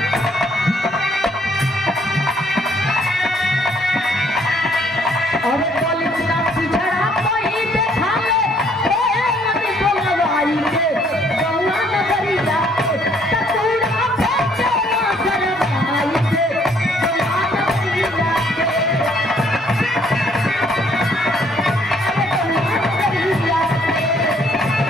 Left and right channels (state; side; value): normal; both; correlation 0.64